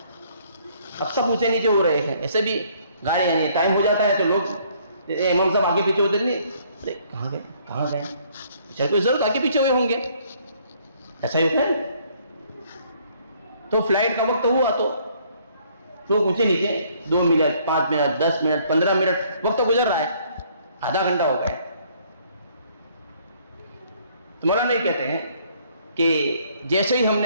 اب سب اونچے نیچے ہو رہے ہیں ایسے بھی گاڑی یعنی ٹائم ہو جاتا ہے تو لوگ امام صاحب آگے پیچھے ہوتے نہیں کہاں گئے چل کوئی ضرورت آگے پیچھے ہوئے ہوں گے ایسا ہی ہوتا ہے. تو فلائٹ کا وقت ہوا تو لوگ اونچے نیچے 2 منٹ 5 منٹ 10 منٹ 15 منٹ وقت گزر رہا ہے آدھا گھنٹہ ہو گیا. تو مولانا یہ کہتے ہیں کہ جیسے ہی ہم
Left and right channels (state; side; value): inverted; both; correlation -0.63